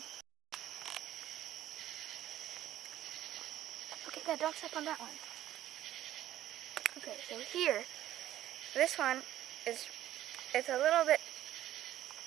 Okay, Dad, don't step on that one. Okay, so here, this one it's a little bit,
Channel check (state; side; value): quieter; left; 12.9 dB